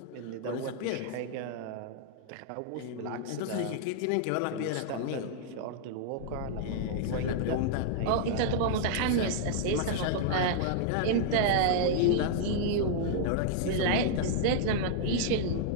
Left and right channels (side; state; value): both; different; correlation -0.01